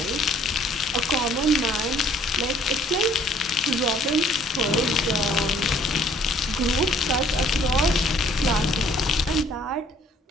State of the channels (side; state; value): both; normal; correlation 0.59